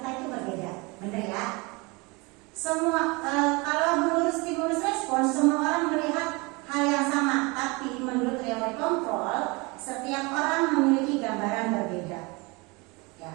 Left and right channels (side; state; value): left; quieter; 26.9 dB